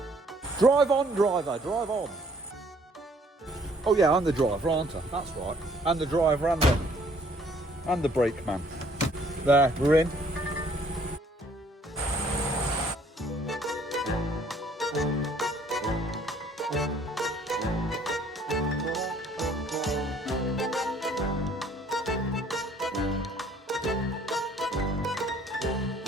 Drive on, driver, drive on. Oh yeah, I'm the driver, aren't I? That's right. I'm the driver and the brake man. There, we're in.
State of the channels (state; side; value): normal; both; correlation 0.61